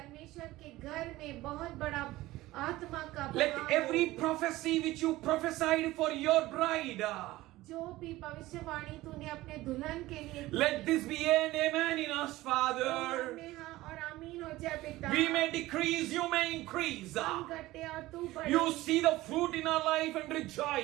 के घर में बहुत बड़ा आत्मा का Let बहाव every हो। prophecy which you prophesied for your bride, जो भी भविष्यवाणी तूने अपने दुल्हन के लिए की, let this be an amen in us, Father. में हाँ और आमीन हो जाए पिता। We may decrease, you may increase. हम घटे और तू बढ़े। You see the fruit in our life and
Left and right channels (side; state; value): left; quieter; 17.7 dB